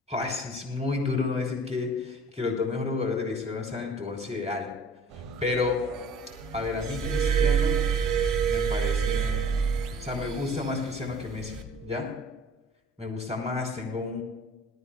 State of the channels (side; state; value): both; normal; correlation 0.48